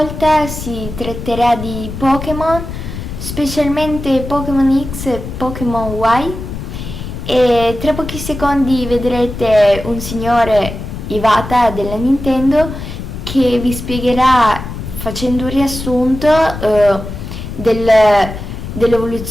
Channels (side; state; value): left; noise; rumble, 8 dB below the sound